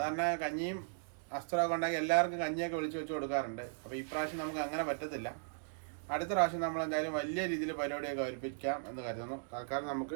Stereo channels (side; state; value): left; silent; digital silence